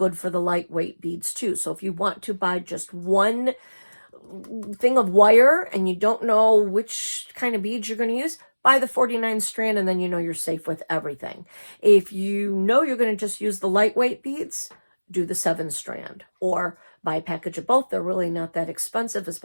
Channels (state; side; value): inverted; both; correlation -1.00